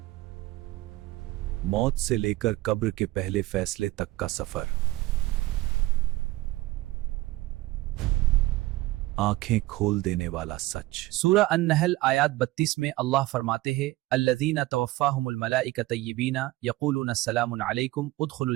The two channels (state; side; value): quieter; left; 18.5 dB